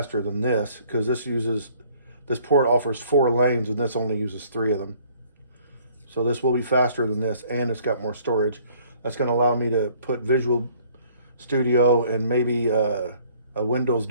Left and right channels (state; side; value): inverted; both; correlation -0.59